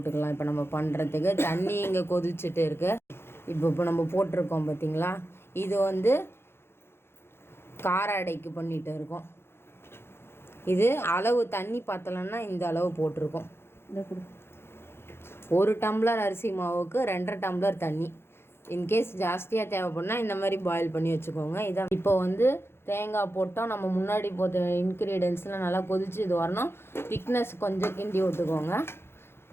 இப்போ நம்ம பண்ணுறதுக்கு தண்ணி இங்கே கொதிச்சுட்டு இருக்கு. இப்போ நம்ம போட்டிருக்கோம் பார்த்தீங்களா, இது வந்து கார அடைக்கு பண்ணிட்டு இருக்கோம். இது அளவு தண்ணி பார்த்தலன்னா இந்த அளவு போட்டிருக்கோம். 1 டம்ளர் அரிசி மாவுக்கு 2.5 டம்ளர் தண்ணி. இன்கேஸ் ஜாஸ்தியாக தேவைப்படுனா இந்த மாதிரி பாயில் பண்ணி வச்சுக்கோங்க. இதான் இப்போ வந்து தேங்காய் போட்டோம். நம்ம முன்னாடி போட்ட இன்க்ரீடியன்ஸ்லாம் நல்லா கொதிச்சு இது வரணும். திக்னஸ் கொஞ்சம் கிண்டி விட்டுக்கோங்க.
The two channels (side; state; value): right; late; 0.12 ms